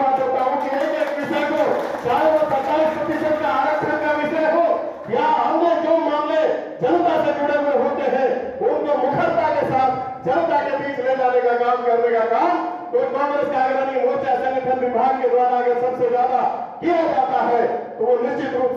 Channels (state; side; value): identical; both; correlation 1.00